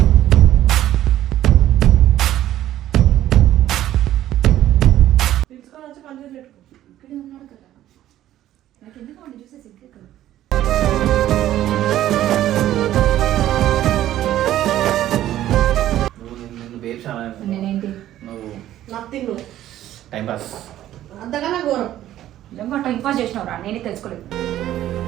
ఇక్కడే ఉన్నాడు కదా, నాకు ఎందుకు వాడిని చూసే సిగ్గే కదా. నేనేంటి నథింగ్ టైం పాస్ అంతకన్నా ఘోరం. నిజంగా టైం పాస్ చేసినవరా, నేనే తెలుసుకోలేదు.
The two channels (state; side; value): quieter; left; 13.0 dB